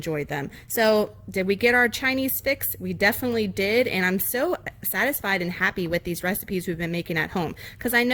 them. So did we get our Chinese fix? We definitely did, and I'm so satisfied and happy with these recipes we've been making at home, because I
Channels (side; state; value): both; identical; correlation 1.00